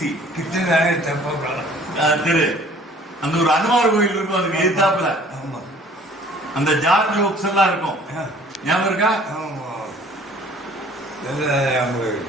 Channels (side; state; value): both; normal; correlation 0.53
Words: கிருஷ்ணராயர் தெப்பக்குளம் தெரு. அந்த ஒரு அனுமார் கோயில் இருக்கும். அதுக்கு எதிர்த்தாப்புல அந்த ஜார்ஜ் புக்ஸ் எல்லாம் இருக்கும். ஞாபகம் இருக்கா?